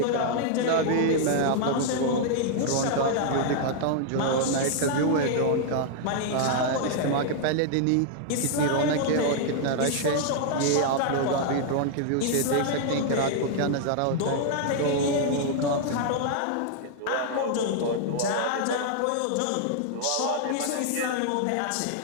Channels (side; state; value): both; different; correlation -0.01